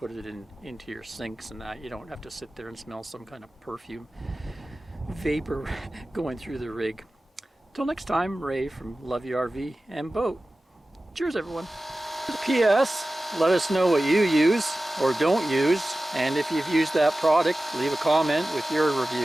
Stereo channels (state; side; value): normal; both; correlation 0.96